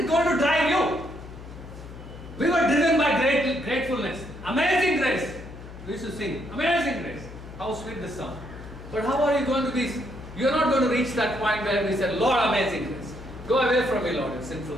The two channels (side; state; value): left; noise; hum, 14 dB below the sound